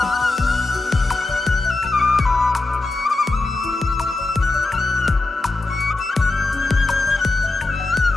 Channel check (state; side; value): quieter; right; 3.1 dB